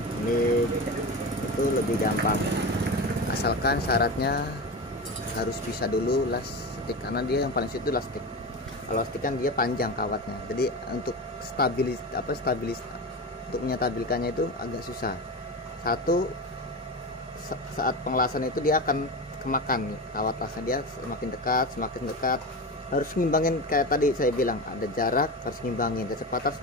ini itu lebih gampang, asalkan syaratnya harus bisa dulu las stick, karena dia yang paling sulit itu las stick. Kalau stick kan dia panjang kawatnya, jadi untuk stabilis untuk menyetabilkannya itu agak susah. Satu, saat pengelasan itu dia akan kemakan kawat lasnya, dia semakin dekat, harus ngimbangin. Kayak tadi saya bilang, ada jarak harus ngimbangin, kecepatan harus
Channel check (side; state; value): both; normal; correlation 0.24